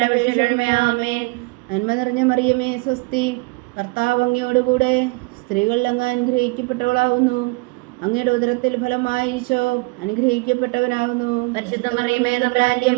അപേക്ഷിച്ചുകൊള്ളണമേ. ആമേൻ. നന്മ നിറഞ്ഞ മറിയമേ സ്വസ്തി, കർത്താവ് അങ്ങയോടുകൂടെ സ്ത്രീകളിൽ അങ്ങ് അനുഗ്രഹിക്കപ്പെട്ടവളാവുന്നു. അങ്ങയുടെ ഉദരത്തിൽ ഫലമായി ഈശോ അനുഗ്രഹിക്കപ്പെട്ടവനാകുന്നു. പരിശുദ്ധ മറിയമേ തമ്പുരാന്റെ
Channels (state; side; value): quieter; left; 27.3 dB